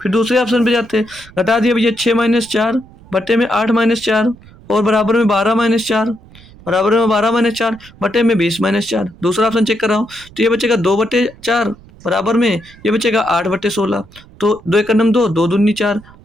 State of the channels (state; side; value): noise; right; rumble, 23 dB below the sound